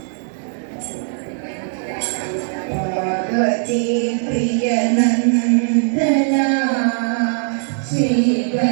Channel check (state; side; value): silent; left; digital silence